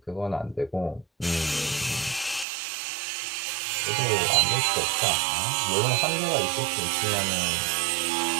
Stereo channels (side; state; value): left; drops out; at 2.5 s